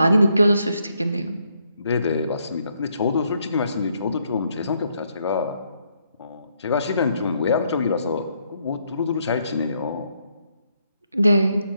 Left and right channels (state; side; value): inverted; both; correlation -0.74